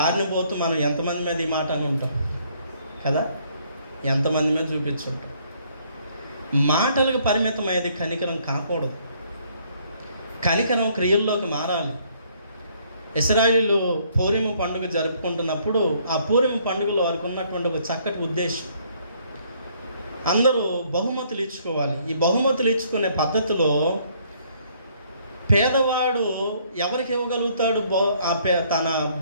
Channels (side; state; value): both; inverted; correlation -0.65